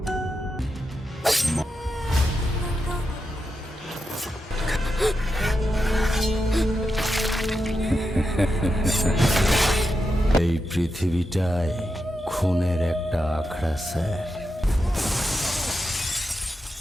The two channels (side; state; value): both; normal; correlation 0.87